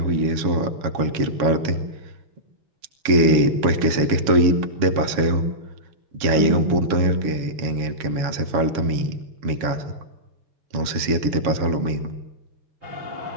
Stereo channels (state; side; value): late; left; 7.2 ms